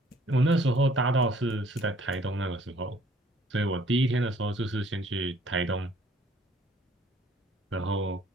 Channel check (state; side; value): normal; both; correlation 0.58